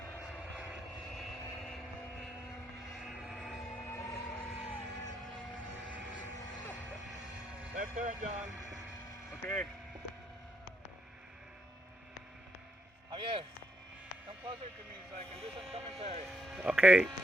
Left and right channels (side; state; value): both; normal; correlation 0.77